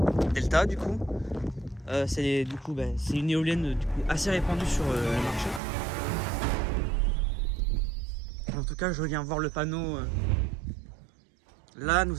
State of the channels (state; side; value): drops out; left; at 5.6 s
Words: Delta du coup. C'est une éolienne du coup, assez répandue sur le marché. En tout cas, je viens voir le panneau. Là,